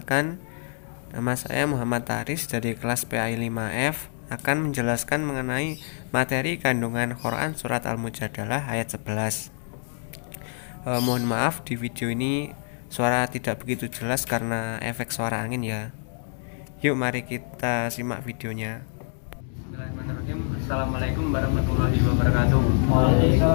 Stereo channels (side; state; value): right; silent; 61 dB below the other